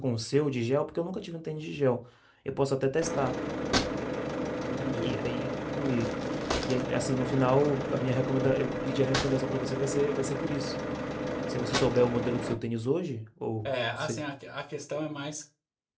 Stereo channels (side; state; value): both; identical; correlation 1.00